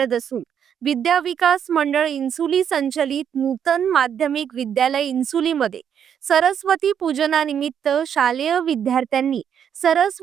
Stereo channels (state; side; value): quieter; left; 8.5 dB